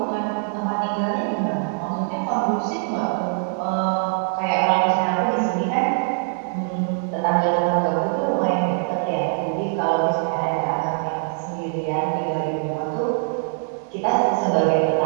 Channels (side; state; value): left; silent; digital silence